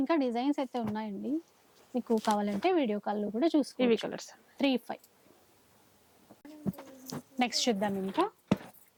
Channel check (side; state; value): both; identical; correlation 1.00